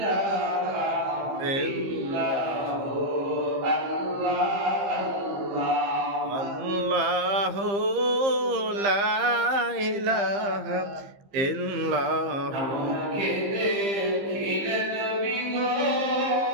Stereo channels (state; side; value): late; left; 15 ms